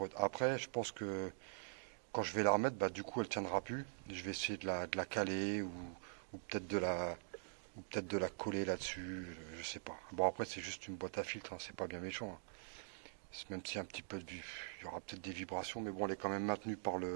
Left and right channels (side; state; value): left; silent; digital silence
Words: Après, je pense que quand je vais la remettre, bah, du coup, elle tiendra plus. Je vais essayer de la caler ou peut-être de la coller là-dessus. Je sais pas. Bon, après, c'est juste une boîte à filtre, hein, c'est pas bien méchant. Hein. Même s'il y a un petit peu il y aura peut-être des vibrations, mais bon, elle est quand même maintenue par